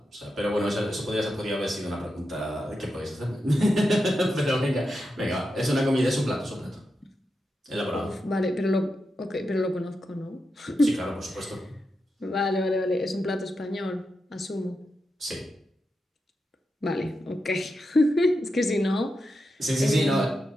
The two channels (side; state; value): both; normal; correlation 0.88